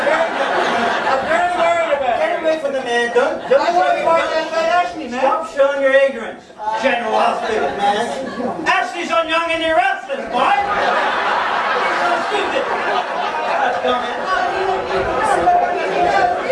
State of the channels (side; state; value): both; identical; correlation 1.00